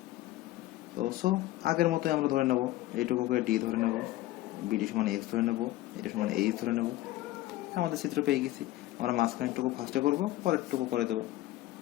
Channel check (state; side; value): quieter; right; 16.2 dB